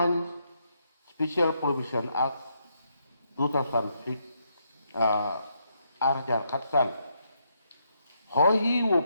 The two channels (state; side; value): inverted; both; correlation -0.78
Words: Special Provision Act 2006 Arjar Khatsan. Hoi